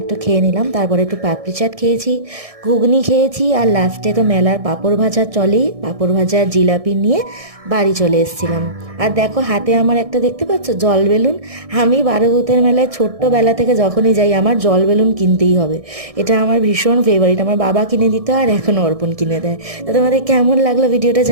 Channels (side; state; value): left; late; 1.6 ms